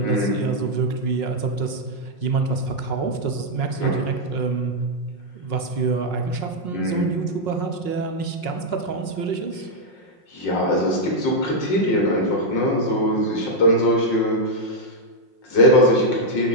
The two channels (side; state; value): right; late; 5.5 ms